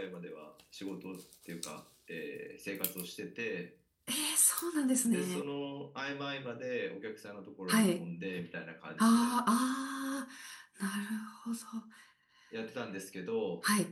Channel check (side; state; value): both; identical; correlation 1.00